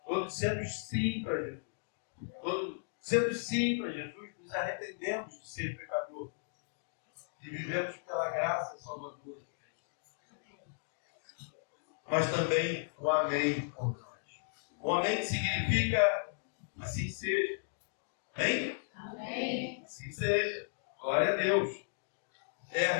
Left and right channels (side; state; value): right; silent; digital silence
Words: Quando dissemos sim para Jesus, quando dissemos sim para Jesus, nos arrependemos de ser pecador e vivemos pela graça salvadora. Mas também o amém por nós. O amém significa assim seja. Amém? Amém. Assim seja. Glória a Deus. É a